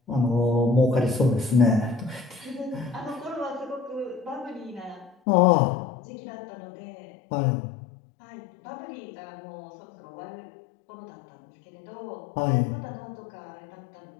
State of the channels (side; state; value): right; drops out; at 5.2 s